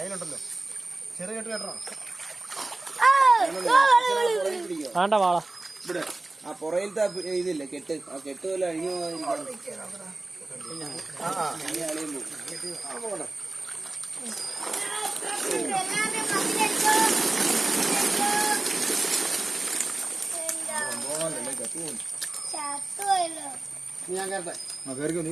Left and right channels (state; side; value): quieter; left; 3.0 dB